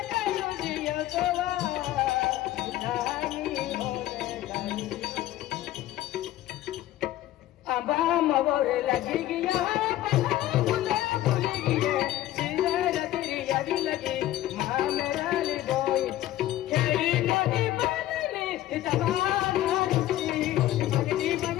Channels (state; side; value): quieter; right; 14.4 dB